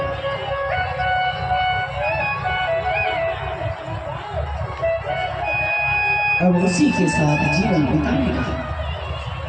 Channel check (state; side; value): identical; both; correlation 1.00